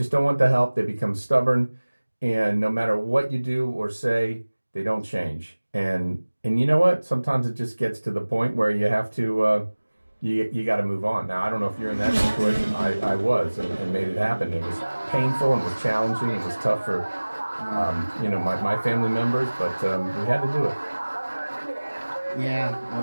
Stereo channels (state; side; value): inverted; both; correlation -1.00